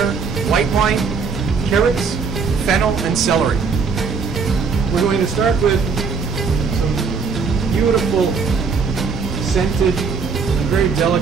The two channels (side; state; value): left; quieter; 5.3 dB